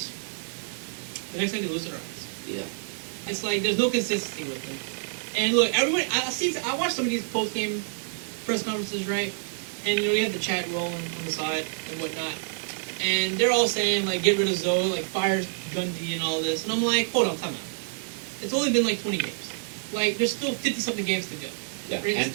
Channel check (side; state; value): left; silent; digital silence